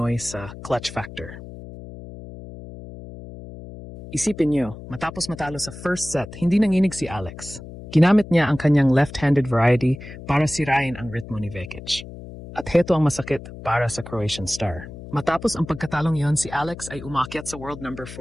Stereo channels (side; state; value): left; noise; hum, 14 dB below the sound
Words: sa clutch factor. Isipin niyo, matapos matalo sa first set, hindi nanginig si Alex. Ginamit niya ang kanyang left-handed variety para sirain ang ritmo ni Vekic. At heto ang masakit para sa Croatian star. Matapos ang pagkatalong yon, si Alex ay umakyat sa world number